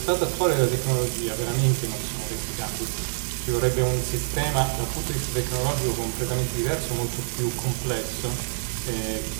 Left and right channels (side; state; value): left; silent; 60 dB below the other